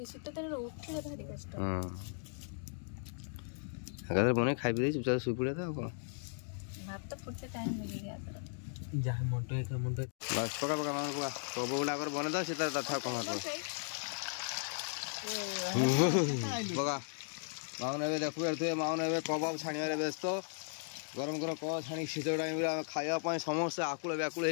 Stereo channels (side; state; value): right; silent; digital silence